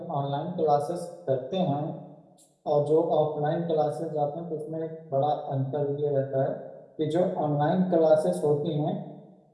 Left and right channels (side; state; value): both; identical; correlation 1.00